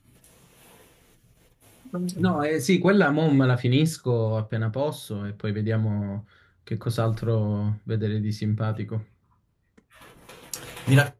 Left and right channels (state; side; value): identical; both; correlation 1.00